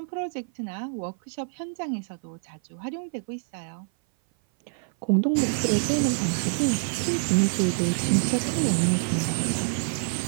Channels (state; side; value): silent; left; 57 dB below the other